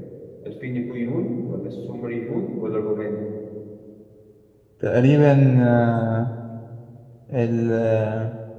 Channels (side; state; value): both; identical; correlation 1.00